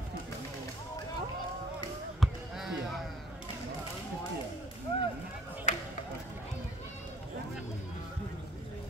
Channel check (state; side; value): normal; both; correlation 0.57